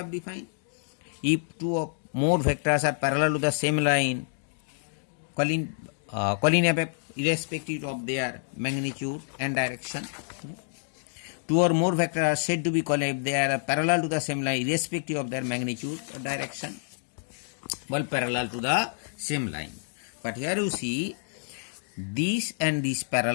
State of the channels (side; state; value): right; silent; digital silence